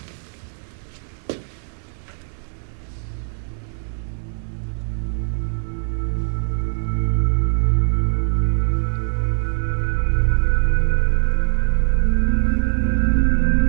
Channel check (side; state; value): left; silent; 65 dB below the other